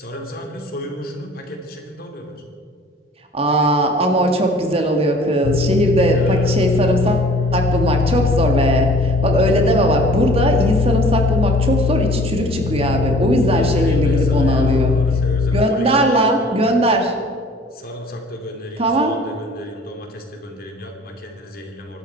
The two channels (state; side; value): normal; both; correlation 0.49